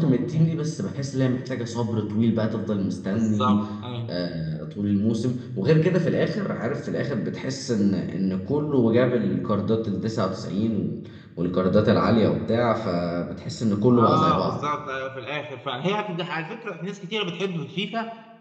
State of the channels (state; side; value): identical; both; correlation 1.00